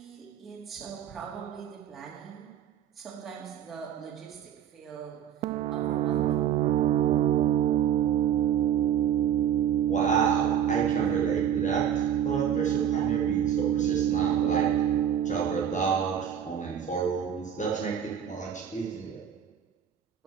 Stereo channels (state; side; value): quieter; left; 9.2 dB